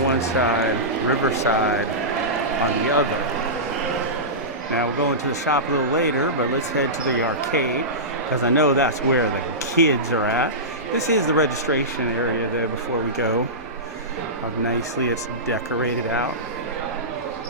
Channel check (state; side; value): normal; both; correlation -0.18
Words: one side, Riverside on the other. Now we'll go into the shop a little later, but let's head to the arcade, because I know that's where the kids are at. This is the registration area there before we go. How nicely it's decorated out.